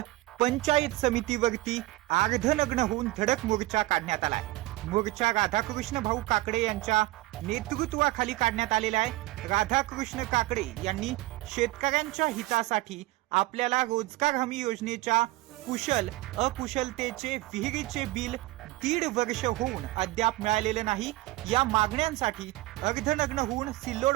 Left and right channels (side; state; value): left; quieter; 19.1 dB